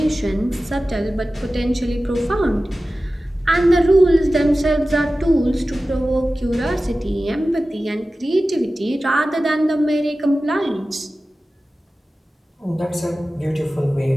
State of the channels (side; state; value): both; normal; correlation 0.95